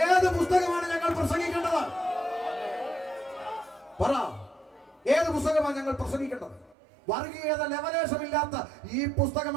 പുസ്തകമാണ് ഞങ്ങൾ പ്രസംഗിക്കേണ്ടത്? പറ, ഏത് പുസ്തകമാണ് ഞങ്ങൾ പ്രസംഗിക്കേണ്ടത്? വർഗീയത ലെവലേശമില്ലാത്ത ഈ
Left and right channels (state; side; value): drops out; left; at 6.8 s